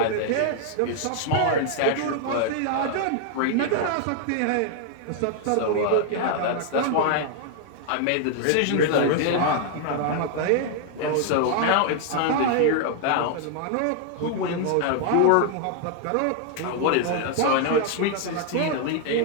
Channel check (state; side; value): different; both; correlation 0.00